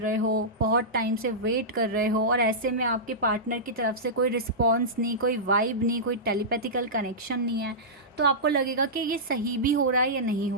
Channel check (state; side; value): normal; both; correlation -0.15